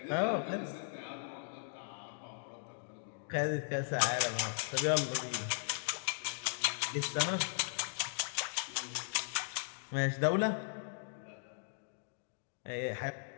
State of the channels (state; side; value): silent; right; digital silence